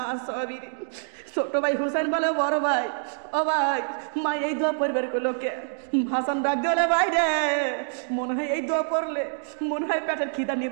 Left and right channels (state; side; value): silent; left; 61 dB below the other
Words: সাবিরিন। ছোট ভাই হোসেন বলে বড় ভাই, ও ভাই মা এই দোয়া পড়বার লোকে। হাসান ডাক দিয়ে ভাই রে, মনে হয় এই দোয়া পড়লে মনে হয় পেটের খিদা